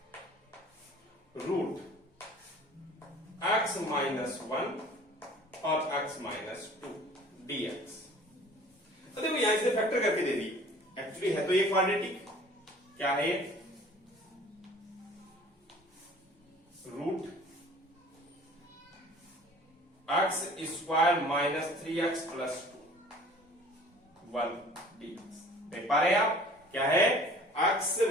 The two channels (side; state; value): both; normal; correlation 0.48